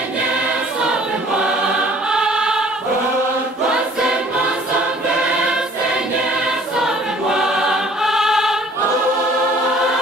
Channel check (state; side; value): normal; both; correlation 0.54